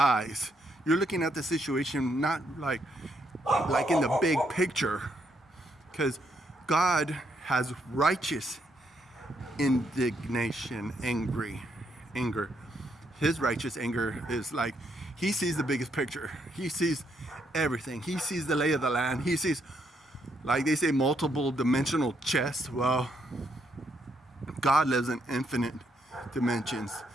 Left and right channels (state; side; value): normal; both; correlation 0.75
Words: You're looking at the situation not like in the big picture, because God has righteous indignation, anger. His righteous anger is like, he sees the biggest picture. He sees everything. He sees the lay of the land. He sees, like they say, multiple dimensional chess. Well, God lives in infinite dimensions.